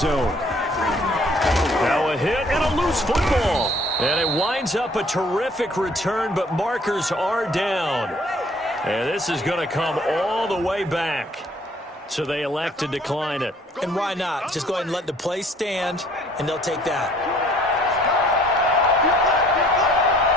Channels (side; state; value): both; normal; correlation 0.58